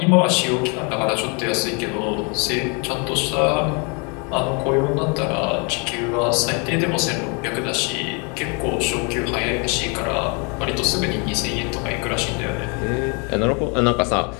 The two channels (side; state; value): right; quieter; 33.3 dB